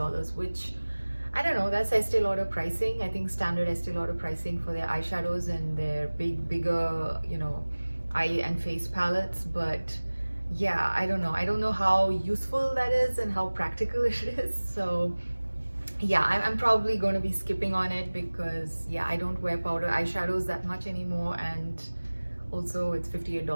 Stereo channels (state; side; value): inverted; both; correlation -1.00